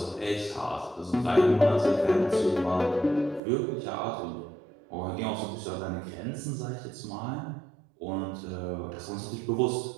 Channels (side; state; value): left; drops out; at 3.4 s